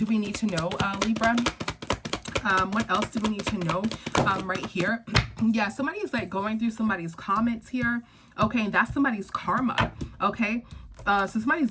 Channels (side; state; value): both; identical; correlation 1.00